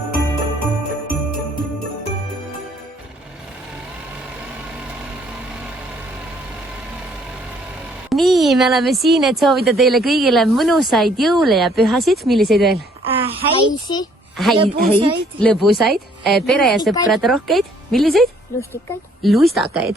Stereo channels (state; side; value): normal; both; correlation 0.63